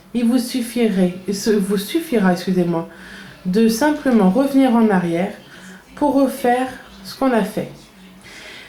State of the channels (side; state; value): both; identical; correlation 1.00